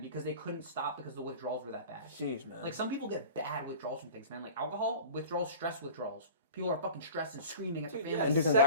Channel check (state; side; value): inverted; both; correlation -0.40